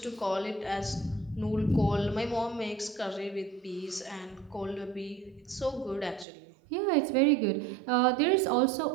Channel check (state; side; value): drops out; left; at 6.2 s